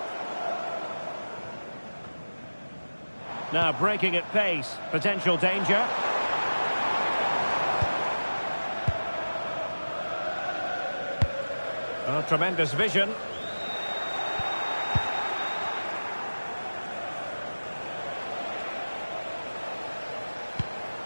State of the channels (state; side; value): inverted; both; correlation -1.00